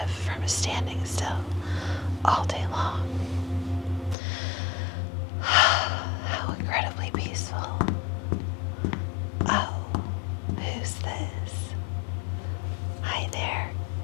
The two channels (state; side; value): drops out; right; at 4.2 s